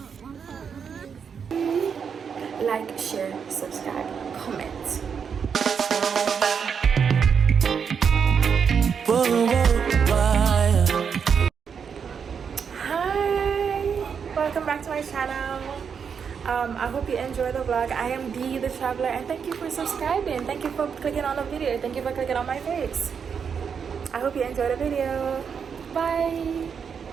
Like, share, subscribe, comment. Hi, welcome back to my channel. I hope you enjoy the vlog. I am Dee the Traveler, and thank you for subscribing. Thank you for clicking on the video. Thank you for clicking on my face. I hope you enjoy the video. Bye.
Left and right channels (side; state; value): left; quieter; 6.7 dB